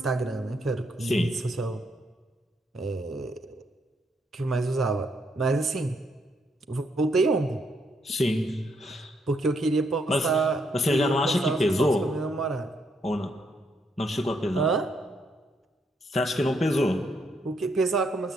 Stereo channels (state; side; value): normal; both; correlation 0.75